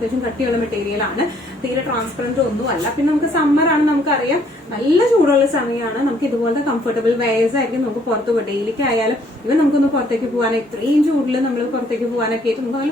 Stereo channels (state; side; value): normal; both; correlation 0.64